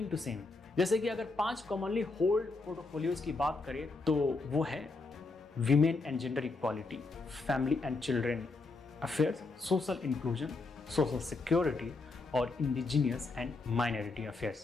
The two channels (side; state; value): right; quieter; 3.7 dB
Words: टू सेम। जैसे कि अगर 5 कॉमनली होल्ड पोर्टफोलियोज की बात करें तो वो है women and gender equality, family and children affairs, social inclusion, social security और इंडिजिनियस एंड माइनॉरिटी